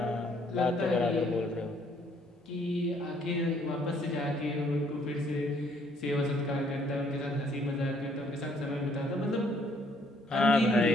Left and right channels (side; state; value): both; normal; correlation 0.65